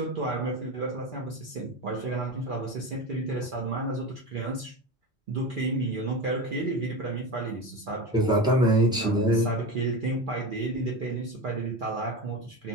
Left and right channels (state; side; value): normal; both; correlation 0.24